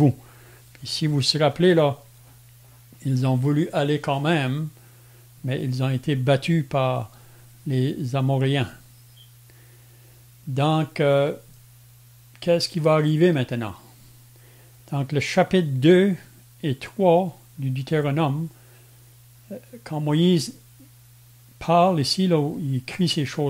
Puis si vous vous rappelez, là, ils ont voulu aller quand même, mais ils ont été battus par les Amoréens. Donc, qu'est-ce qui va arriver maintenant? Donc, le chapitre 2 et 3 du Deutéronome, quand Moïse parle ici, là, où il écrit ces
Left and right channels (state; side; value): identical; both; correlation 1.00